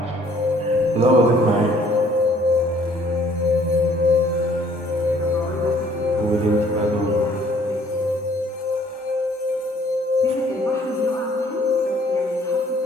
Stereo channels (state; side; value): normal; both; correlation 0.59